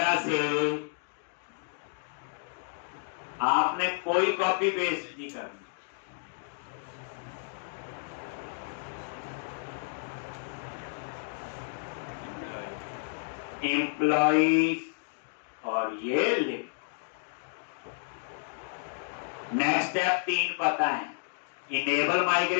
से आपने कोई कॉपी पेस्ट नहीं करनी, एम्प्लॉइज, और ये लिख। नेक्स्ट स्टेप 3 पता है, इनेबल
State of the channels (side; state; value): right; silent; digital silence